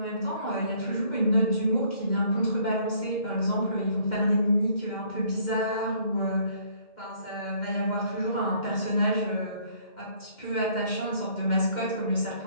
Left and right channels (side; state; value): right; late; 2.1 ms